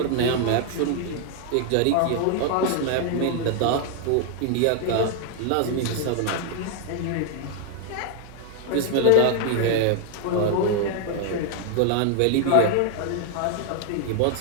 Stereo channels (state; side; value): different; both; correlation 0.00